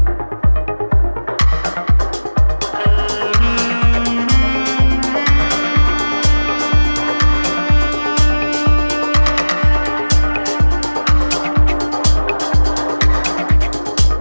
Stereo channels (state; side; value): inverted; both; correlation -1.00